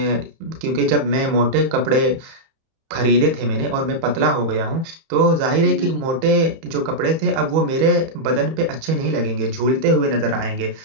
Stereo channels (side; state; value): left; late; 31 ms